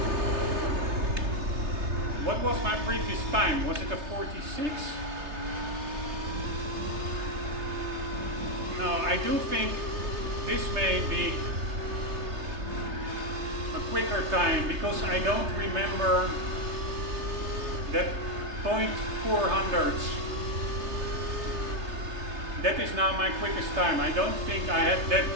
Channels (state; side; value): late; left; 3.3 ms